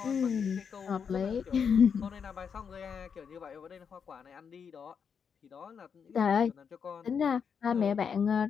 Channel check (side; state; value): right; quieter; 6.7 dB